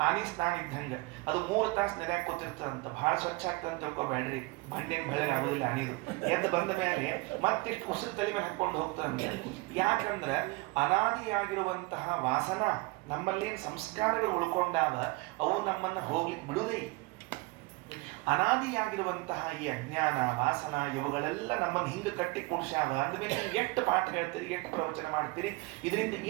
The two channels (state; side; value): quieter; left; 24.9 dB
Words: ಆನಿ ಸ್ನಾನ ಇದ್ದಂಗ ಅದು 3 ತಾಸು ನೆಲೆ ಕೂತಿರ್ತದಂತ, ಬಹಳ ಸ್ವಚ್ಛ ಆಗ್ತದಂತ ತಿಳ್ಕೊಬೇಡ್ರಿ. ಬಂಡೇನ್ ಬೆಳಗ್ಗೆ ಆಗೋದಿಲ್ಲ ಅನಿದು. ಎದ್ದು ಬಂದ ಮೇಲೆ ಮತ್ತಿಷ್ಟು ಉಸಿರು ತಲೆ ಮೇಲೆ ಹಾಕೊಂಡು ಹೋಗ್ತದಂತ. ಯಾಕಂದ್ರ ಅನಾದಿಯಾಗಿರುವಂತಹ ವಾಸನ ನಮ್ಮಲ್ಲೇನು ಸಂಸ್ಕಾರಗಳು ಉಳ್ಕೊಂಡಾವ, ಅವು ನಮ್ಮನ್ನ ಹೋಗ್ಲಿಕ್ಕೆ ಬಿಡುವುದೇ. ಅನಾದಿಯಾಗಿರುವಂತಹ ಈ ಅಜ್ಞಾನ ವಾಸನ ಇವುಗಳೆಲ್ಲ ನಮ್ಮನ್ನು ಹಿಂಗೆ ಕಟ್ಟಿ ಕೂಡ್ಸ್ಯಾವ. ಅಂದಮೇಲೆ ನೀವು ಎಷ್ಟು ಪಾಠ ಹೇಳ್ತೀರಿ, ಎಷ್ಟು ಪ್ರವಚನ ಮಾಡ್ತೀರಿ, ಇದರಿಂದ